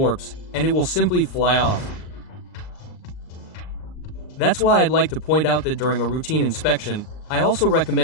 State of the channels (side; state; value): right; late; 39 ms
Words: and it will simply fly off. That's why I'd like to point out that during a routine inspection, I also